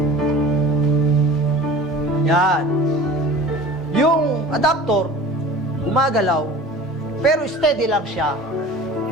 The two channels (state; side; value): normal; both; correlation 0.41